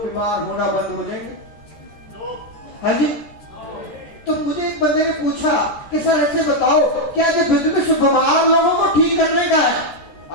बीमार होना बंद हो जाएंगे? हाँ जी। तो मुझे एक बंदे ने पूछा कि सर ऐसे बताओ, क्या ये बिजनेस बीमार लोगों को ठीक करने का है?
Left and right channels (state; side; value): late; right; 13 ms